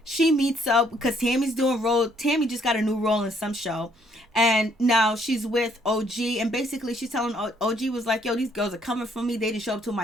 She meets up because Tami's doing role. Tami just got a new role in some show. And now she's with OG. And basically, she's telling OG was like, yo, these girls are coming for me. They didn't show up to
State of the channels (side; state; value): both; normal; correlation 0.67